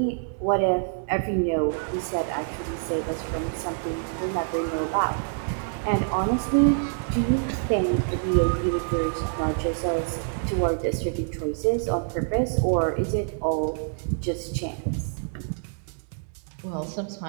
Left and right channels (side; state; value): left; silent; 61 dB below the other